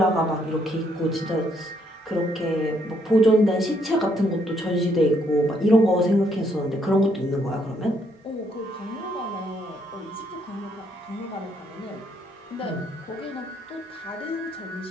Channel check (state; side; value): normal; both; correlation 0.71